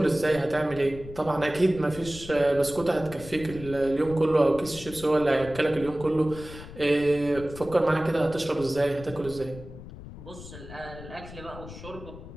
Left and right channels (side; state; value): left; noise; rumble, 14 dB below the sound